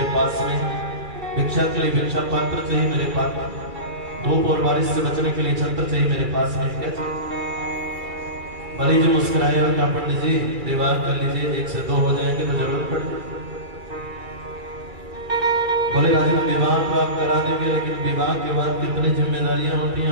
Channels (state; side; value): late; left; 2.3 ms